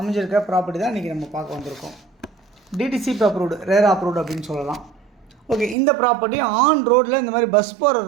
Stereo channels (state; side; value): drops out; left; at 5.8 s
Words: ப்ராப்பர்ட்டி தான் இன்றைக்கி நம்ம பார்க்க வந்திருக்கோம். டிடிசிபி அப்ரூவ்டு, ரேரா அப்ரூவ்டு அப்படின்னு சொல்லலாம். ஓகே, இந்த ப்ராப்பர்ட்டி ஆன் ரோட்டில் இந்த மாதிரி பஸ் போகிற